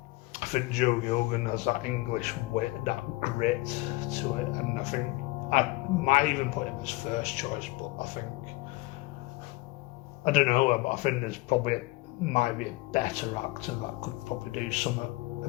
I think Joe Gilgan has that English wit, that grit to it, and I think I might even put him as first choice, but I don't know, but I think there's probably might be a better actor that could probably do something a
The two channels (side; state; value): right; quieter; 21.6 dB